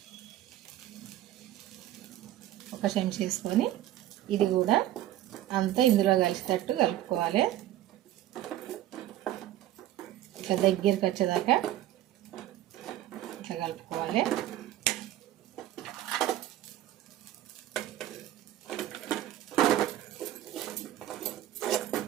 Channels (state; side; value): quieter; left; 13.4 dB